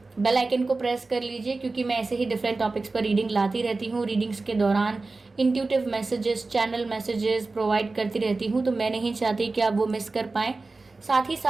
बेल आइकन को प्रेस कर लीजिए, क्योंकि मैं ऐसे ही डिफरेंट टॉपिक्स पर रीडिंग लाती रहती हूँ। रीडिंग्स के दौरान intuitive messages, channel messages provide करती रहती हूँ, तो मैं नहीं चाहती कि आप वो मिस कर पाएँ। साथ ही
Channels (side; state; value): left; quieter; 3.6 dB